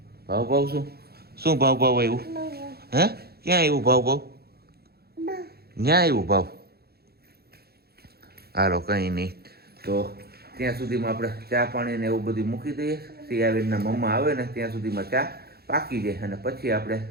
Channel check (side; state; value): left; late; 0.46 ms